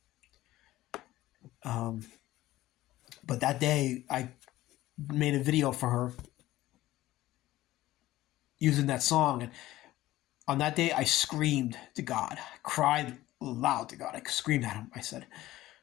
But that day, I made a video for her using that song, and on that day, I screamed to God, I cried loud to God. I screamed at him. I said,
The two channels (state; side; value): quieter; right; 16.0 dB